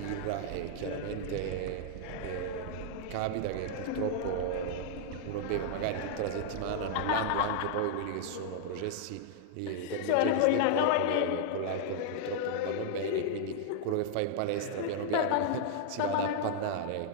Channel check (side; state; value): both; different; correlation -0.01